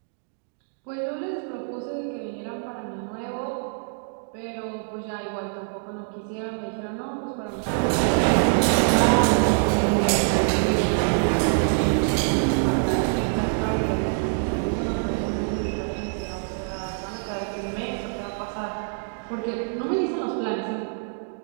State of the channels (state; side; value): silent; left; digital silence